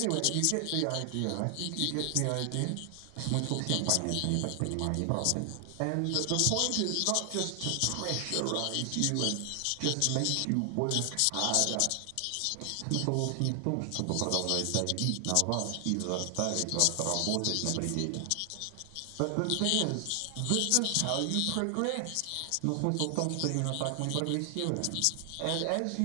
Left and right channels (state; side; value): different; both; correlation 0.00